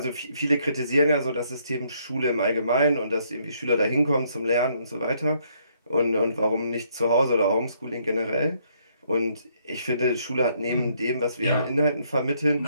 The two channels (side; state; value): both; inverted; correlation -0.70